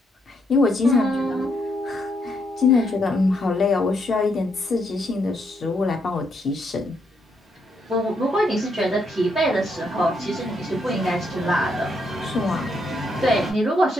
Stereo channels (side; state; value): both; normal; correlation 0.76